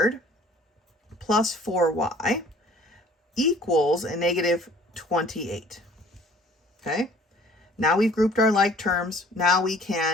plus 4y equals a negative 28. Okay? Now we've grouped our like terms. Now we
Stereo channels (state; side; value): normal; both; correlation 0.53